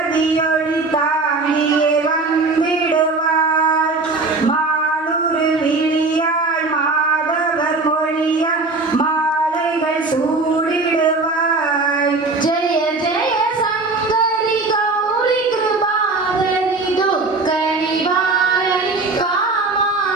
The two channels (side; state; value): left; quieter; 3.6 dB